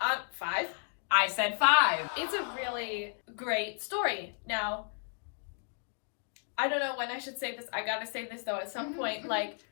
5. I said 5. It's a really great story. Now, I don't know when I should say this. I gotta say this though at some point. Like,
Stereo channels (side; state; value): right; silent; 56 dB below the other